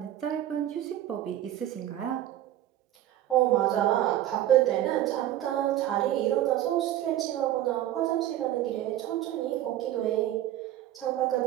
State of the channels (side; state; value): left; quieter; 12.9 dB